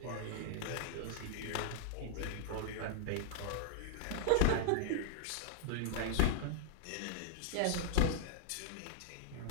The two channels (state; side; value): different; both; correlation 0.00